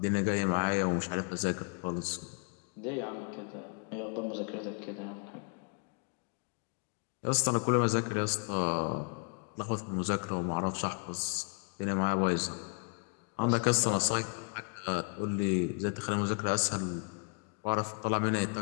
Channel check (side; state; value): right; quieter; 38.2 dB